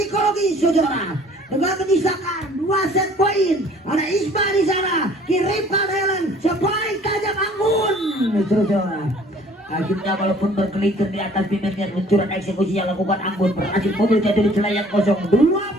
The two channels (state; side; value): normal; both; correlation 0.54